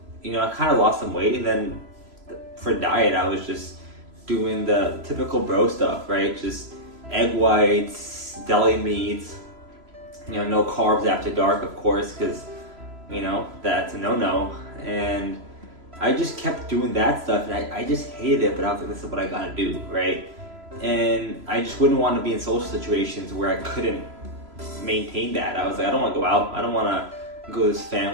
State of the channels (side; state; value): left; late; 3.0 ms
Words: I kind of lost some weight. And then for diet, I was just doing the typical bro stuff, right? Just egg whites, deli meats, no carbs after dark, of course, because that's a no-no. And I just kept doing that stuff, and I just hated it, but I was like, this is what I gotta do, right? And I just wouldn't want to be in social situations where I couldn't maintain that. I was like, I don't want to go out. I don't want to go to this